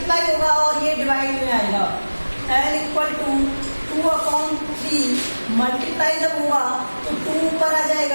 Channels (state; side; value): inverted; both; correlation -1.00